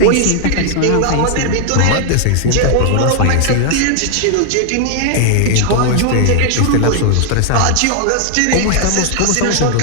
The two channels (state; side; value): different; both; correlation 0.00